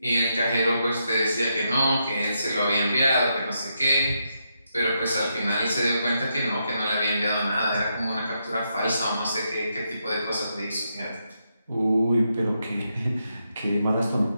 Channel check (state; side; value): inverted; both; correlation -0.81